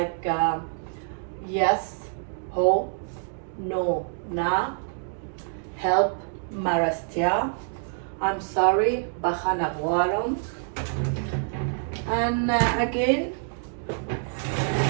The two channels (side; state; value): left; silent; digital silence